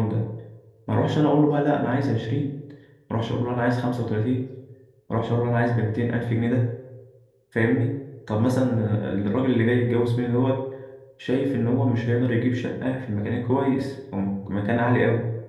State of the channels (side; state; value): both; identical; correlation 1.00